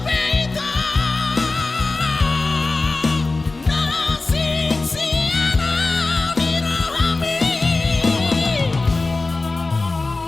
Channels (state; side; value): quieter; right; 3.5 dB